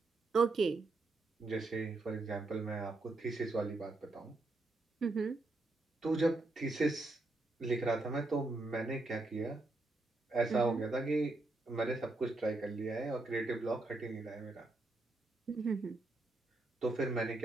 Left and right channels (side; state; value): left; quieter; 3.1 dB